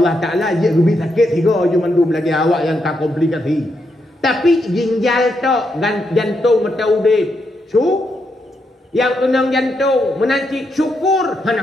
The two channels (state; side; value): normal; both; correlation 0.81